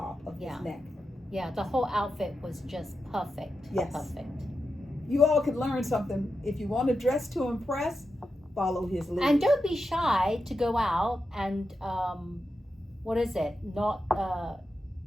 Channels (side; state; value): both; normal; correlation 0.89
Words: of his neck. Yeah, the whole outfit was just perfect. Yes. Perfect. You all could learn something. If you want to dress to impress, follow his lead. And don't be shy to go out and not